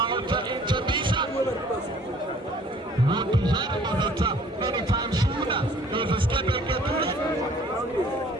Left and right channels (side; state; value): both; normal; correlation 0.54